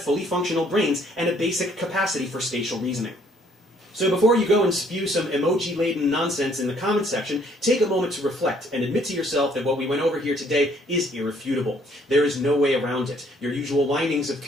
functional brains and a basic capacity for spatial reasoning. So before you go and spew some emoji-laden nonsense in the comments section, take a moment to reflect and admit to yourself that what we went over here today is irrefutable. There is no way around it. Your usual windings of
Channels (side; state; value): both; normal; correlation 0.64